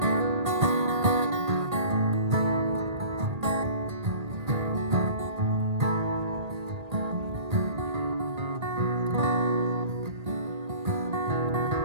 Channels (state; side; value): late; left; 1.8 ms